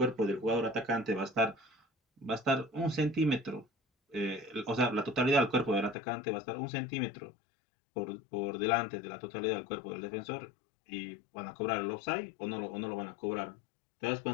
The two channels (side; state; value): right; drops out; at 6.0 s